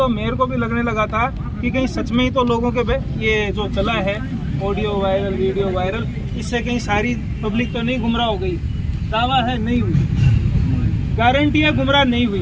मेरे को भी लगने लगा था कि कहीं सच में ही तो लोगों के ये जो चला है ऑडियो वायरल, वीडियो वायरल, इससे कहीं सारी पब्लिक तो नहीं गुमराह हो गई। दावा है नहीं हुई, गारंटी है गुमराह नहीं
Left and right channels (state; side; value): identical; both; correlation 1.00